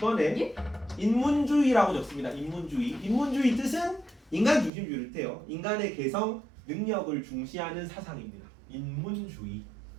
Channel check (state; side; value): drops out; left; at 4.7 s